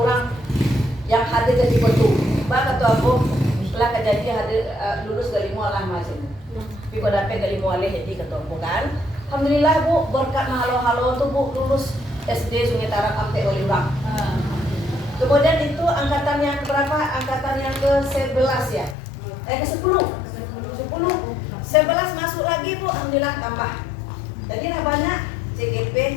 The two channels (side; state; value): right; drops out; at 18.9 s